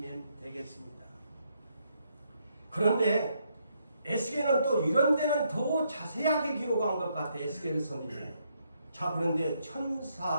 되겠습니다. 그런데 에스겔은 또 이런 데는 더 자세하게 기록한 것 같아. 에스겔 선지자. 자, 그런데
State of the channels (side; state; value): both; inverted; correlation -0.75